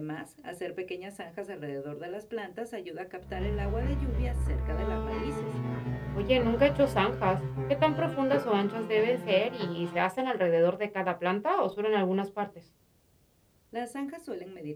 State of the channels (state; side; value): identical; both; correlation 1.00